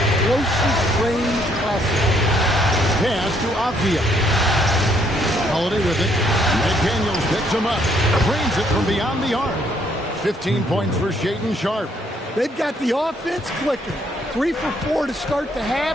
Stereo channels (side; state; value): both; normal; correlation 0.68